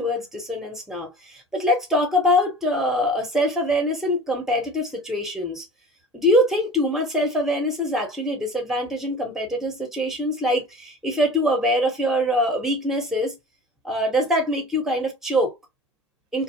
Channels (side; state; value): both; normal; correlation 0.39